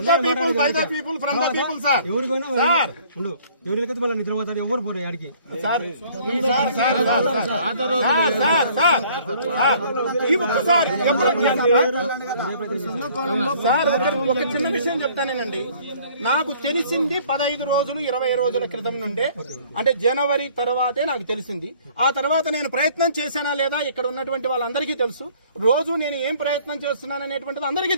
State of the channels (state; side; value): inverted; both; correlation -0.56